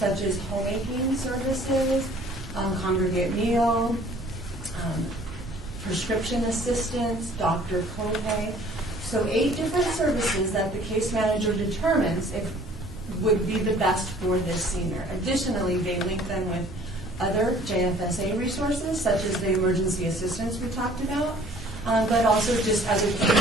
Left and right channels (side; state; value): both; normal; correlation 0.53